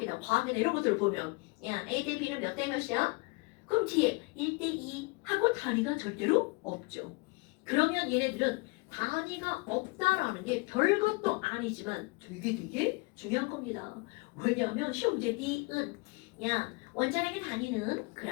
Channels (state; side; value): quieter; right; 27.6 dB